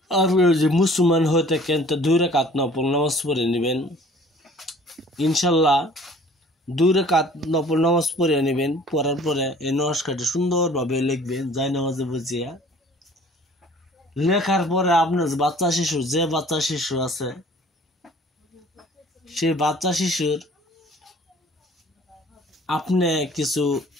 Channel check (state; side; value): normal; both; correlation 0.51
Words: আপনি যে মুসলমান হয়ে থাকেন তো 2 রাকাত নফল নামাজ পড়ে নেবেন। ইনশাল্লাহ 2 রাকাত নফল নামাজ পড়ে নেবেন। পড়ার পরে এই নস্কারটি সুন্দরভাবে লিখবেন যাই নামাজে বুঝিয়া। লেখার পরে আপনার যে বাচ্চা শিশু আছে, সেই বাচ্চা শিশুর আপনি কিছু